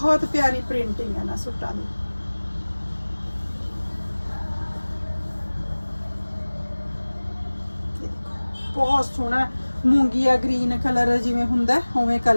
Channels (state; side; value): inverted; both; correlation -1.00